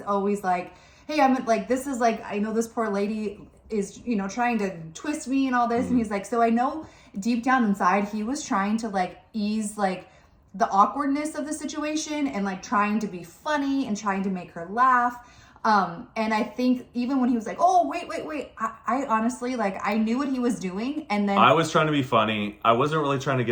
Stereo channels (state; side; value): identical; both; correlation 1.00